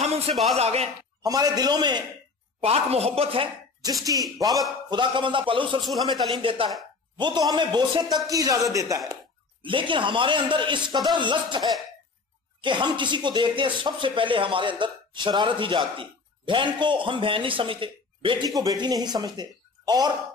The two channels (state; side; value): quieter; right; 4.3 dB